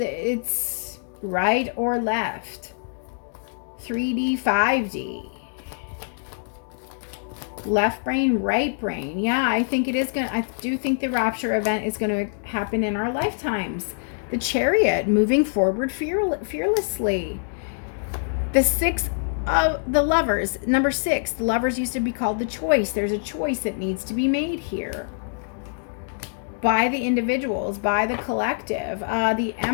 right or left. 3D, 5D. Left brain, right brain. Yeah, I think it is I do think the rapture event is going to happen in our lifetimes. The Chariot, moving forward fearlessly. The Six of the Lovers, number 6. The Lovers used to be called the Choice. There's a choice that needs to be made here. By the individuals, by the collective. The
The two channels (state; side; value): silent; right; digital silence